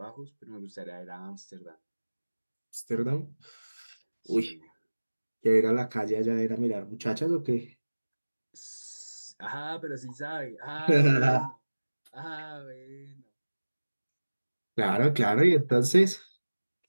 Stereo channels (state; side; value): inverted; both; correlation -1.00